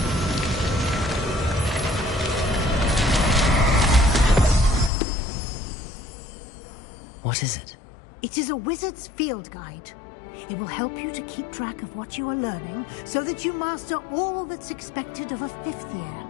What is it? It is a wizard's field guide. It will help you to keep track of what you are learning so that you master all that's expected of a 5th year.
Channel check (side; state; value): right; drops out; at 4.9 s